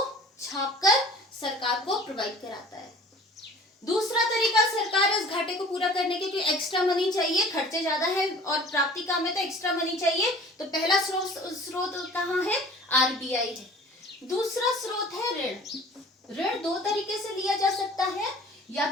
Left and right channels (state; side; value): normal; both; correlation 0.46